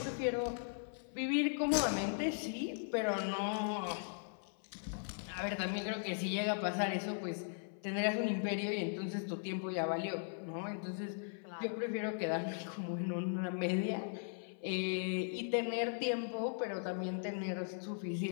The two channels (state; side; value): silent; right; 52 dB below the other